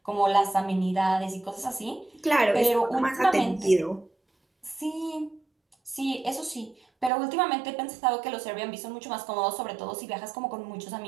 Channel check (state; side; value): drops out; left; at 7.1 s